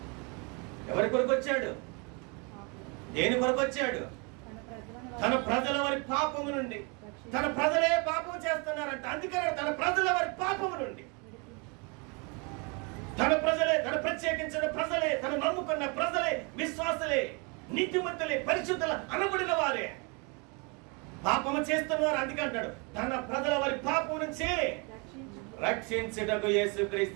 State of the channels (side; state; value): left; quieter; 31.9 dB